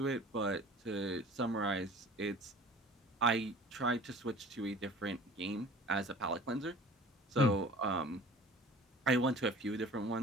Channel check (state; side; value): normal; both; correlation 0.45